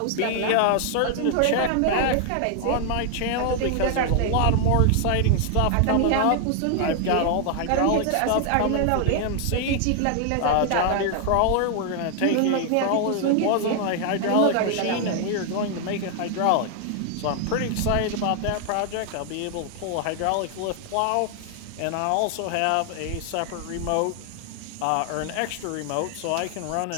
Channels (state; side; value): different; both; correlation 0.00